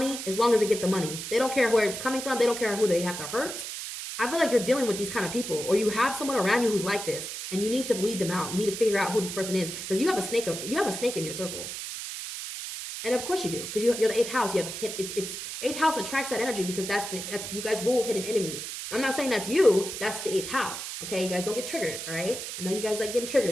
as long as they get the money. They don't care where it's coming from. They don't care who they have to hurt. I feel like you're dealing with these kind of people, or you have someone around you who's like this, and you need to weed them out. You need to figure out who this person is, because you have a snake in your circle. And of course you do, because you're the 8th house. You have it's 8th house attracts that energy, because that's you guys rule hidden enemies. I'm not saying that's you. That's the 8th house. Okay, you guys don't get triggered. All right. I know you guys like getting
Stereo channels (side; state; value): right; noise; hiss, 7 dB below the sound